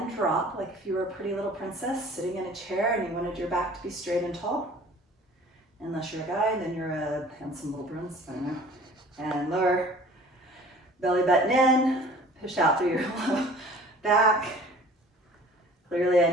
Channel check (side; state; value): both; normal; correlation 0.48